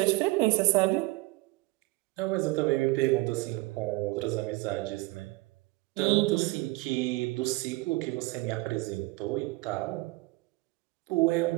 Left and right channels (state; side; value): quieter; left; 21.8 dB